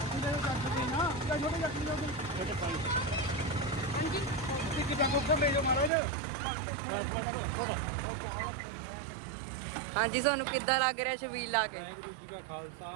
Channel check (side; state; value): left; drops out; at 5.9 s